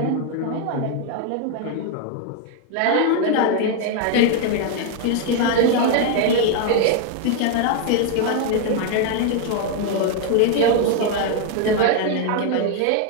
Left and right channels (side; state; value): both; different; correlation 0.00